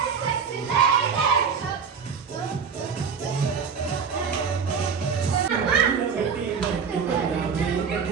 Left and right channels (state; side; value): quieter; left; 6.2 dB